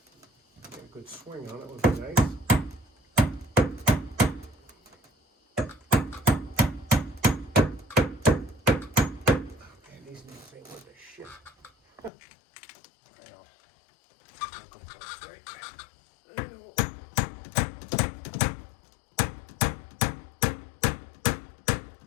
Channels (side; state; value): right; drops out; at 12.1 s